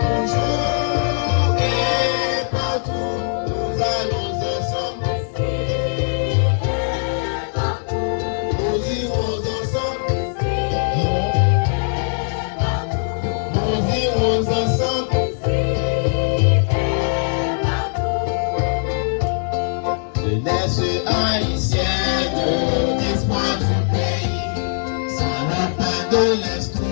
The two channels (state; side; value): silent; right; digital silence